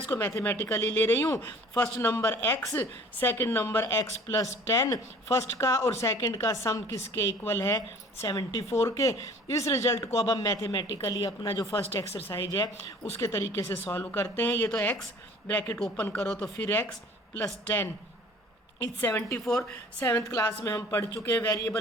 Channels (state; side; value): normal; both; correlation 0.49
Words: मैथमेटिकली ले रही हूँ। First number x, second number x plus 10। First का और सेकंड का सम किसके इक्वल है? 74 के। इस रिजल्ट को अब हम मैथमेटिकली अपना जो फर्स्ट एक्सरसाइज है उसके तरीके से सॉल्व करते हैं। ये तो x ब्रैकेट ओपन करो तो फिर x plus 10 is 74। 7th class में हम पढ़ चुके हैं